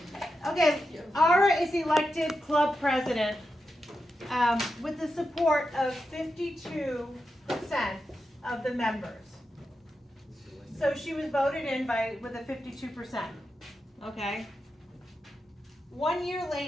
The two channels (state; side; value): normal; both; correlation 0.88